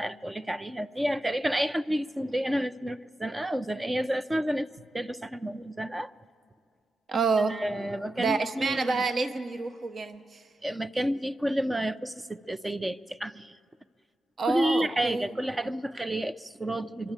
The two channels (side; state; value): both; normal; correlation 0.91